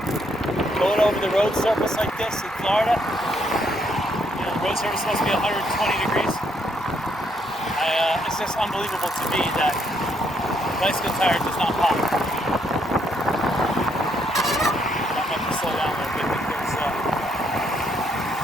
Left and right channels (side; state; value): both; normal; correlation 0.73